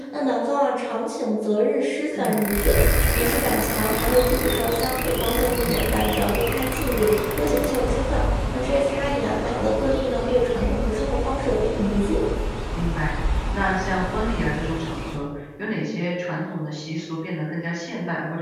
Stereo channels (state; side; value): identical; both; correlation 1.00